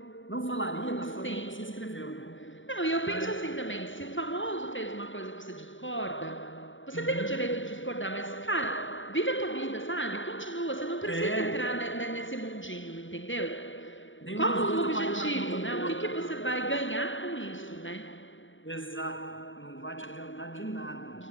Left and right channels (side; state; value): right; late; 0.56 ms